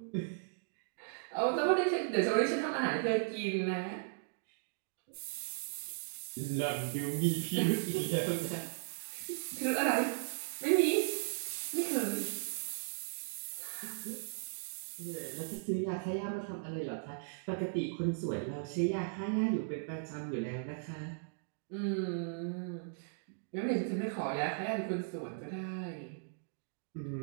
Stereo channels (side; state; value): left; silent; digital silence